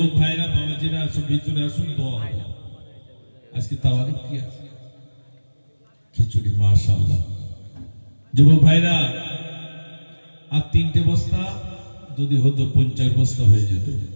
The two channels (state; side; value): inverted; both; correlation -1.00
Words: ভাইরা বাবাজিরা আসুন ভিতরে আসুন দোয়া হবে আজকে তাওয়ারিক কি আছে খিচুড়ি মাশাআল্লাহ যুবক ভাইরা আর 3টে বস্তা যদি হতো 50 বস্তা হয়ে যেত